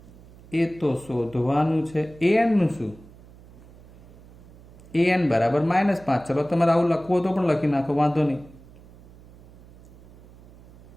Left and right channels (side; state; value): right; noise; hum, 22 dB below the sound